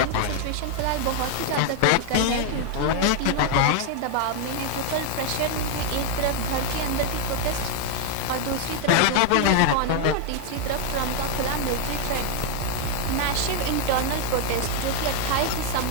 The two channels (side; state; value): both; different; correlation 0.00